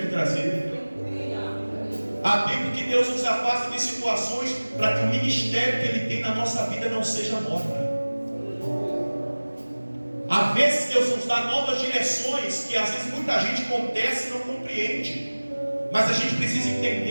me trazer. Há tempo que Deus nos afasta de situações para que o ministério que Ele tem na nossa vida não seja morto. Há vezes Deus nos dá novas direções que às vezes muita gente contesta e não compreende. Mas a gente precisa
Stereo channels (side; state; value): both; inverted; correlation -1.00